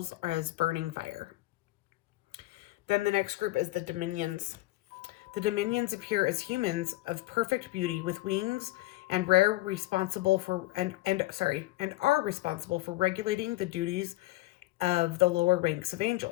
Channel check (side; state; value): right; quieter; 18.9 dB